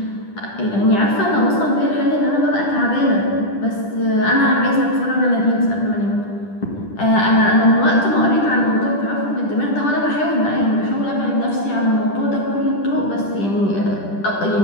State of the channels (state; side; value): late; right; 10 ms